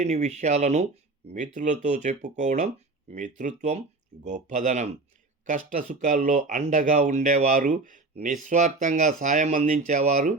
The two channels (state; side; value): quieter; left; 3.5 dB